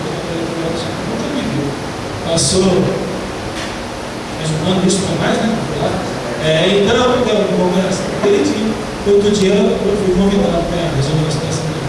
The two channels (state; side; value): identical; both; correlation 1.00